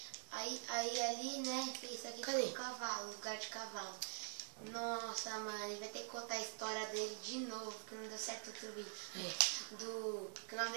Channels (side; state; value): left; silent; digital silence